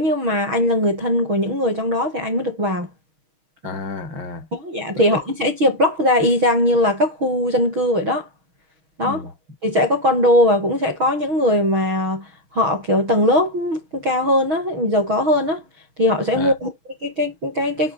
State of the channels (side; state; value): left; late; 6.2 ms